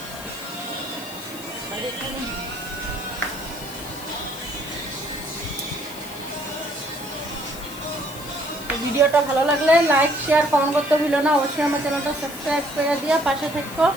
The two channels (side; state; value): left; noise; hiss, 14 dB below the sound